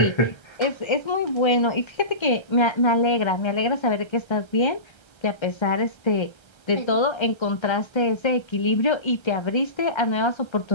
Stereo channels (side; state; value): right; late; 1.3 ms